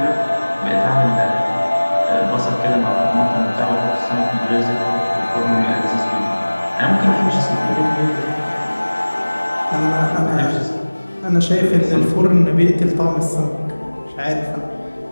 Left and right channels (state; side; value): inverted; both; correlation -1.00